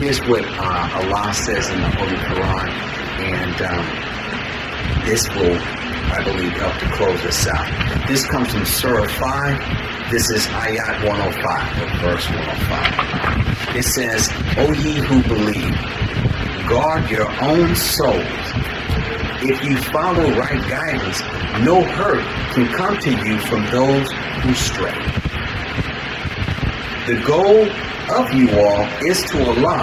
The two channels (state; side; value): identical; both; correlation 1.00